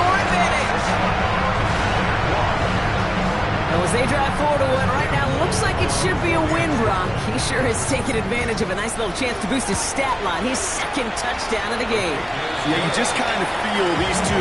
advantage. Well, as they drive forward to what right now looks like it should be a win, Brock. He sure has taken advantage of a nice little chance to boost his stat line. His second touchdown of the game. Yeah, you just kind of feel these two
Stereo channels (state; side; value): identical; both; correlation 1.00